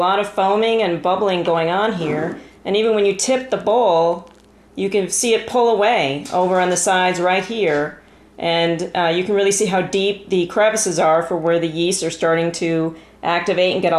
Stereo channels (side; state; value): both; identical; correlation 1.00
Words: of foaming and bubbling going on here. And even when you tip the bowl, you can see it pull away over on the sides right here. And you can really see how deep the crevices are for where the yeast are starting to activate and get